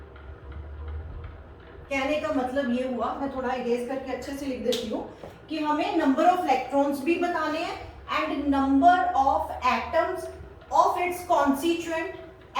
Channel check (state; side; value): identical; both; correlation 1.00